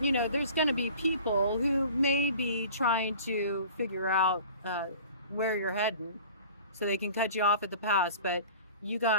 you know, there's going to be people who may be trying to figure out where you're heading so they can cut you off at the pass, but you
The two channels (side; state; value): both; inverted; correlation -0.44